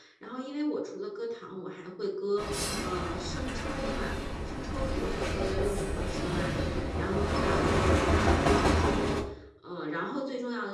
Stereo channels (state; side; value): identical; both; correlation 1.00